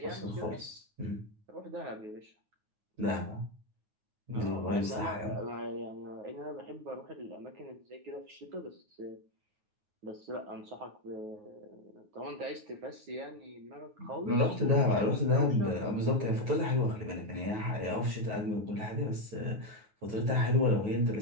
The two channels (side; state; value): left; late; 9.1 ms